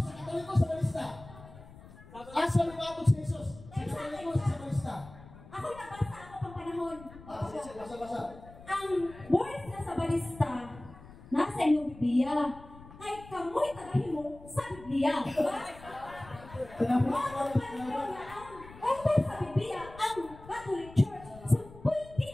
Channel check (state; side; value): noise; left; rumble, 19 dB below the sound